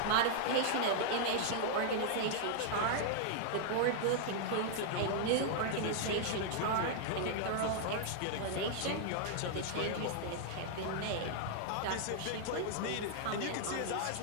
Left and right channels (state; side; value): different; both; correlation -0.01